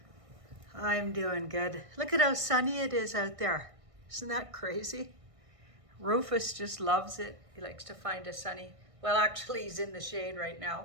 I'm doing good. Look at how sunny it is out there. Isn't that crazy? Rufus just loves it. He likes to find a sunny, well actually he's in the shade right now.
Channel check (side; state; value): left; late; 1.6 ms